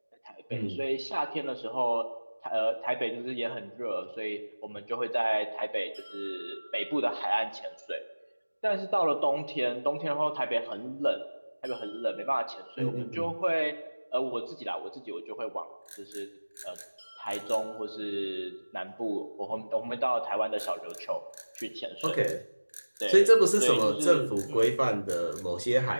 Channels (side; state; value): both; inverted; correlation -1.00